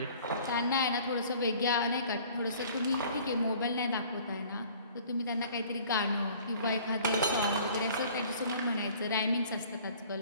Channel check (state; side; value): inverted; both; correlation -0.51